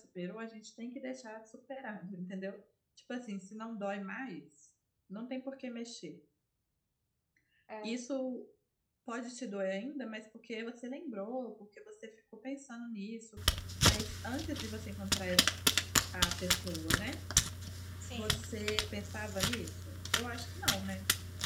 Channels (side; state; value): both; identical; correlation 1.00